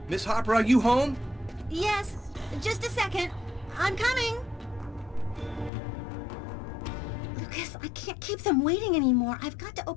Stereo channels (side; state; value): right; drops out; at 5.7 s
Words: Miss Harper, are you home? Yes, just a second. I'm coming. Lucas, I can't keep them waiting anymore. I've got to